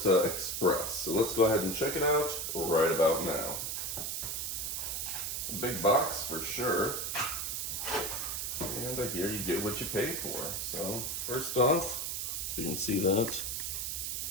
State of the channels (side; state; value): right; noise; hiss, 2 dB below the sound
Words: Express. So let's go ahead and check it out right about now. A big box for sure. And here you get what you pay for. So first off, if you can see that,